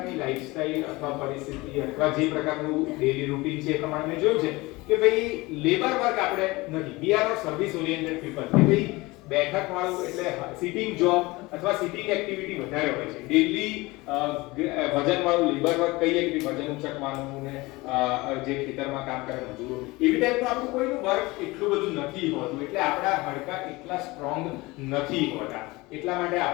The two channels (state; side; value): quieter; right; 22.1 dB